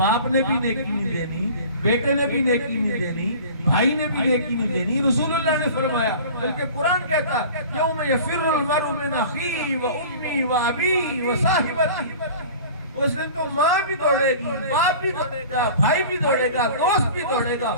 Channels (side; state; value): both; inverted; correlation -0.41